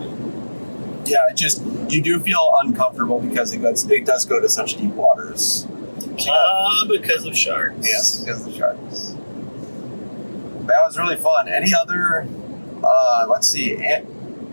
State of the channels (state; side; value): inverted; both; correlation -1.00